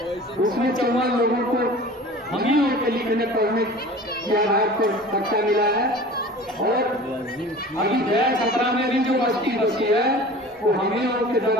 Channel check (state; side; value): normal; both; correlation 0.40